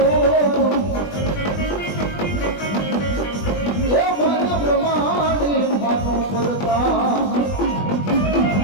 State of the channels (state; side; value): late; right; 20 ms